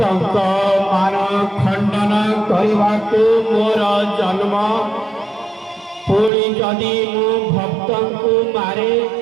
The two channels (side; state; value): left; drops out; at 6.3 s